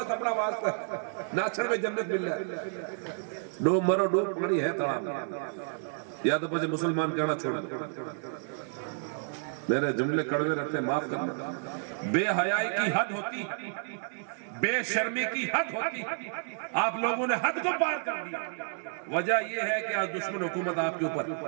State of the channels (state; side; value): silent; left; digital silence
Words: اپنا واسطہ ہے، ناچن میں جنت مل جائے، ڈوب مرو ڈوب پڑی ہے تڑاب، یا تو پچھے مسلمان کہنا چھوڑ دو۔ میرے جملے کڑوے رہتے ہیں، معاف کرنا۔ بے حیائی کی حد ہوتی ہے، بے شرمی کی حد ہوتی ہے، آپ لوگوں نے حد کو پار کر دیا۔ وجہ یہ ہے کہ آج دشمن حکومت آپ کے اوپر،